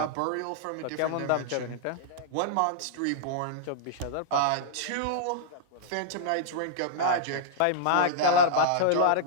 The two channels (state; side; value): different; both; correlation -0.02